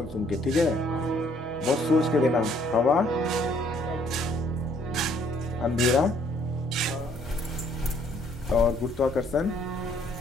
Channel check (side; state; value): both; normal; correlation 0.64